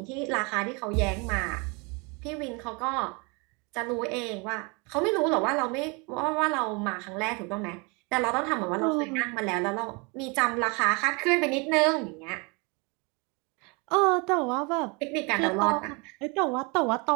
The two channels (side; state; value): left; quieter; 30.1 dB